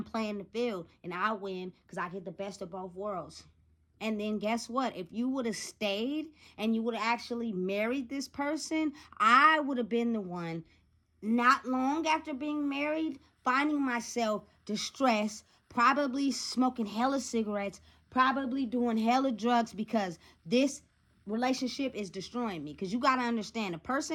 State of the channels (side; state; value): both; identical; correlation 1.00